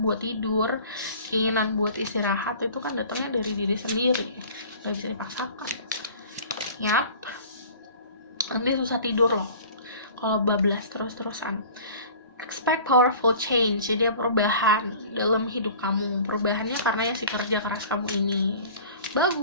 tidur, keinginan buat istirahat itu kan datangnya dari diri sendiri, nggak bisa dipaksakan. Yap, nanti susah tidur loh kalau bablas terus-terusan. Expect powerful change, jadi perubahan dalam hidup kamu. Perubahannya karena ya si kerja keras kamu ini.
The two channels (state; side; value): inverted; both; correlation -0.44